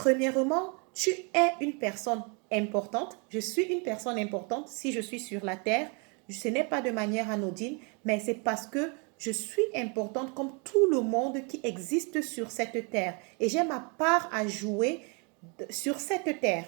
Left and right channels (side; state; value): left; quieter; 34.2 dB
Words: tu es une personne importante. Je suis une personne importante si je suis sur la terre. Ce n'est pas de manière anodine, mais c'est parce que je suis importante comme tout le monde qui existe sur cette terre. Et j'ai ma part à jouer sur cette terre.